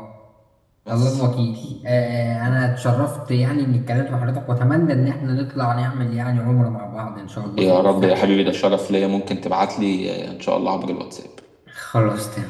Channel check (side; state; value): both; identical; correlation 1.00